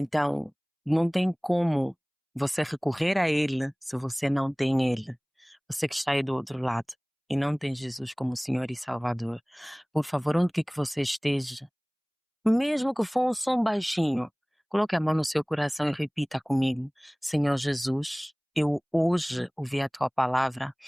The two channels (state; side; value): identical; both; correlation 1.00